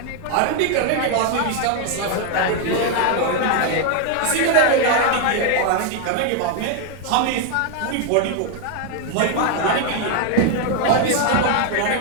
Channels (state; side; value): different; both; correlation 0.01